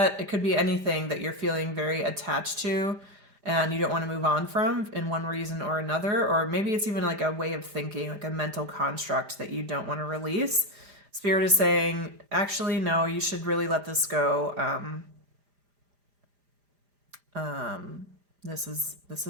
it could be anything that you're feeling very attached to and you don't want to move on from in one reason or another, or maybe it's even like a way of thinking, like a mental construct that you don't want to release. Spirit is saying, actually, no, you should really let this go. This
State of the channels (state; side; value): late; left; 5.0 ms